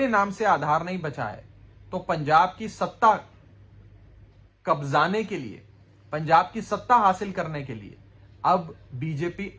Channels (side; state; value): both; identical; correlation 1.00